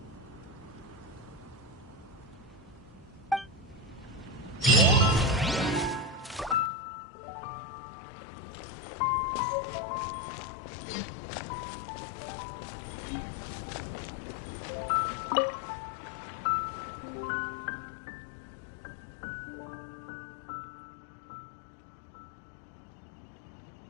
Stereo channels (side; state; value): right; drops out; at 6.7 s